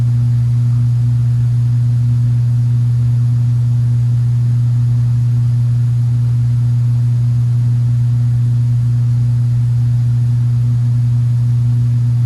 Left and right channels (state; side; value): identical; both; correlation 1.00